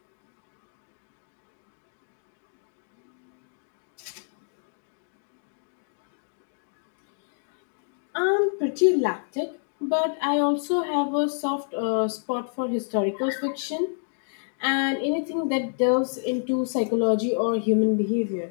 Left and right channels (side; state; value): right; silent; digital silence